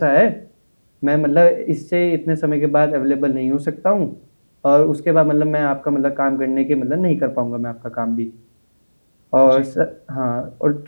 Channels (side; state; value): both; inverted; correlation -1.00